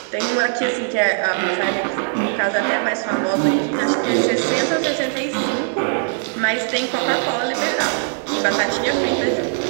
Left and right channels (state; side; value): silent; left; 61 dB below the other